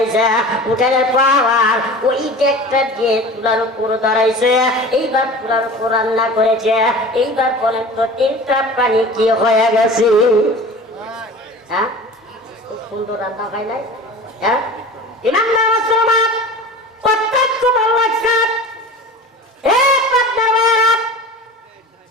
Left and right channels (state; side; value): normal; both; correlation 0.37